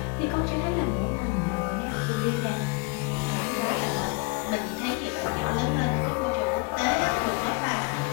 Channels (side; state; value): right; quieter; 27.5 dB